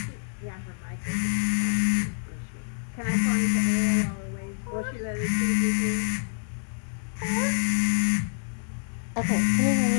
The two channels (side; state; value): right; silent; digital silence